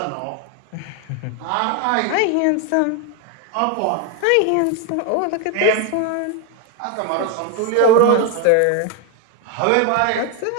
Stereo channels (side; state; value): both; different; correlation 0.01